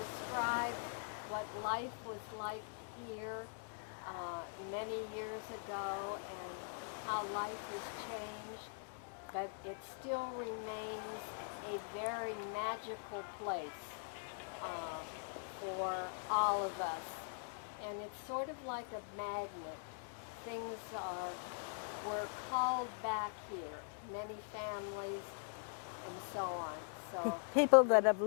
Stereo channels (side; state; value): right; silent; digital silence